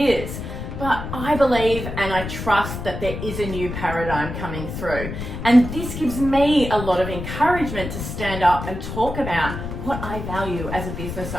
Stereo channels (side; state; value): left; noise; rumble, 7 dB below the sound